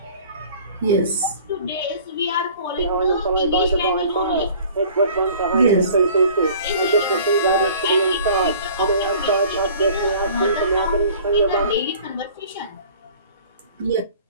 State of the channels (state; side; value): inverted; both; correlation -0.49